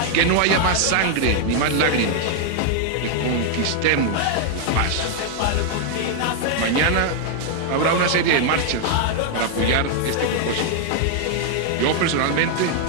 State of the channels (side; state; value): both; different; correlation 0.00